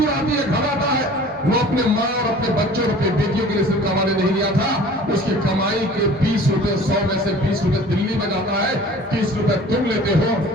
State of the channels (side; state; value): both; normal; correlation 0.46